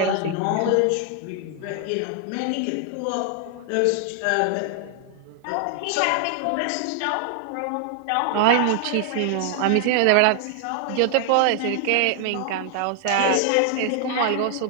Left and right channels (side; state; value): both; different; correlation 0.00